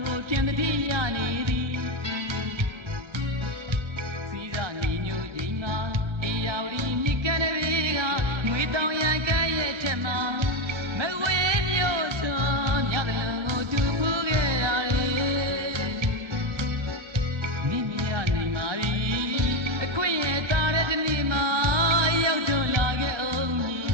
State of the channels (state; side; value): late; left; 1.3 ms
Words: ကိုပြန်တတိရနေသည်စီးစာညီညွတ်ခြင်းမှာတရားဝတီမြစ်ကမ်းတွေကငွေတောင်ရကဲ့ရဲ့ထက်မှာမဝေးမျိုးစွာညတလုံးကိုတူဖူးခဲ့ရတယ်နိမရနိုင်ပါပြီအခွင့်ရဲ့တာတဲ့ဒီနေ့မှာရောက်တော့လာခဲ့အောင်